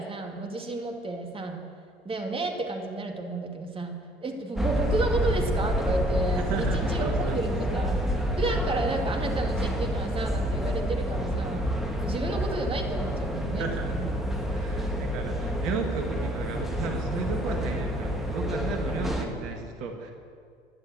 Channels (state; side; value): normal; both; correlation 0.60